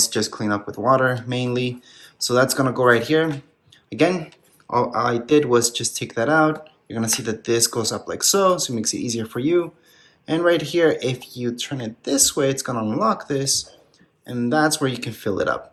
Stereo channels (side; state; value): both; identical; correlation 1.00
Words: just clean up with water mainly. So that's gonna go right here. Again, all I did was just take that out. You're gonna see that this goes up like so it makes it easier for you. And right here, if you turn it this way, it's gonna unlock this, and that's where you can fill it up.